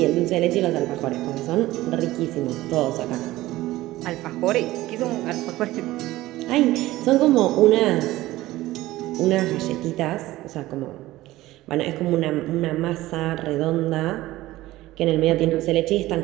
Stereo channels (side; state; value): left; quieter; 17.0 dB